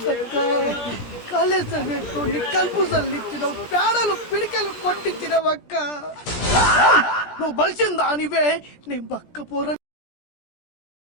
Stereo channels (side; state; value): right; late; 17 ms